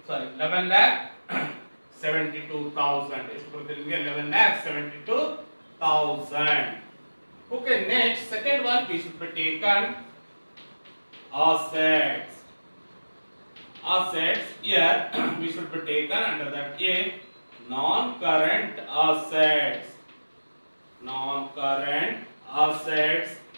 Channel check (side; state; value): both; inverted; correlation -1.00